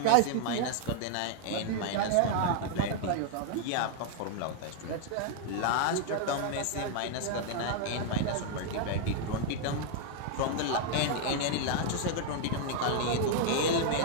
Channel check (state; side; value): different; both; correlation 0.00